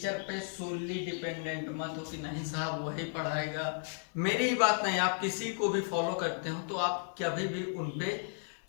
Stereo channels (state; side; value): silent; right; digital silence